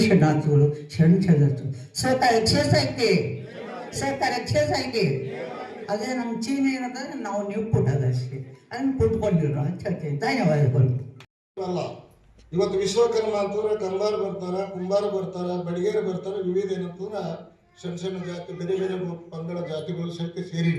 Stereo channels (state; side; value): identical; both; correlation 1.00